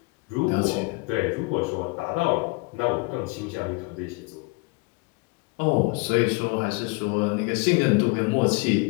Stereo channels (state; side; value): quieter; right; 28.3 dB